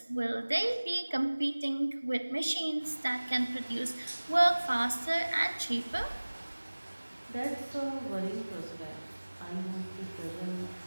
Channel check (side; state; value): both; inverted; correlation -1.00